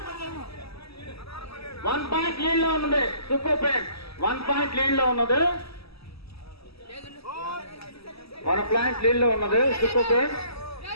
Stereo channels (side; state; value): right; late; 0.77 ms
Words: 1 point lead లో ఉన్నది సూపర్ ఫ్రెండ్స్ 1 పాయింట్ లీడ్ లో ఉన్నది 1 పాయింట్ లీడ్ లో ఉన్నది సూపర్ ఫ్రెండ్స్